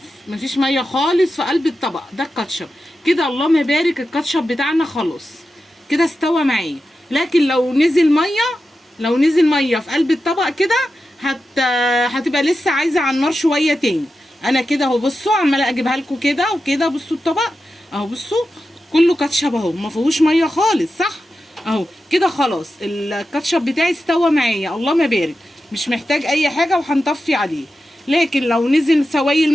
مفيش ميه خالص في قلب الطبق ده الكاتشب كده. اللهم بارك الكاتشب بتاعنا خلاص كده استوى معايا. لكن لو نزل ميه في قلب الطبق كده هتبقى لسه عايزه على النار شويه تاني. انا كده اهو بصوا عماله اجيبها لكم كده وكده. بصوا الطبق اهو بصوا كله كاتشب اهو ما فيهوش ميه خالص صح اهو كده. خلاص الكاتشب بتاعي استوى معايا اللهم بارك، مش محتاج اي حاجه وهنطفي عليه. لكن لو نزل سوائل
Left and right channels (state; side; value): normal; both; correlation 0.91